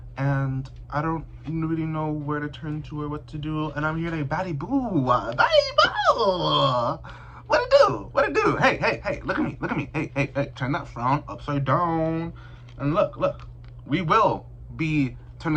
And I don't really know where to turn to or what to do. And I'm here like, baddie boo. Baddie boo. What it do? Hey, look at me. Hey, turn that frown upside down. And look. We will be turning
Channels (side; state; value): both; identical; correlation 1.00